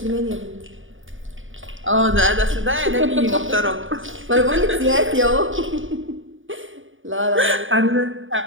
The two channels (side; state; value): left; late; 0.57 ms